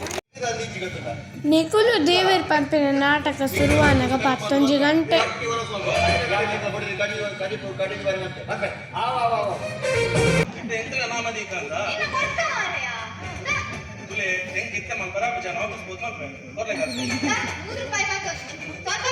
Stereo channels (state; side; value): identical; both; correlation 1.00